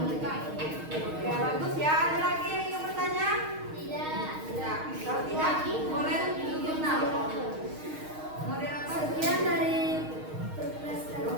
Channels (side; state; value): left; late; 6.4 ms